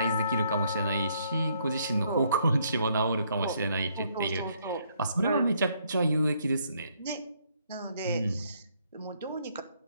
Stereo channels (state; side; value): inverted; both; correlation -0.69